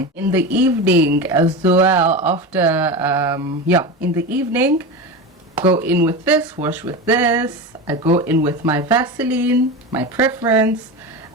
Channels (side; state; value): both; normal; correlation 0.23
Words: In the evening as well, after in the evening, go in with this, wash with this. I go in with my Vaseline, my preference.